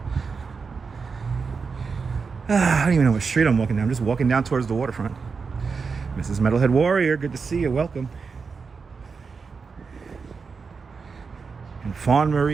I don't even know what street I'm walking down. I'm just walking down towards the waterfront. Mrs. Metalhead Warrior, good to see you. Welcome. And Fawn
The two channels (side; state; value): left; quieter; 5.1 dB